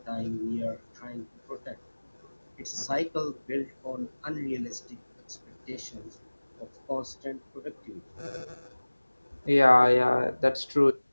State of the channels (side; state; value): both; inverted; correlation -1.00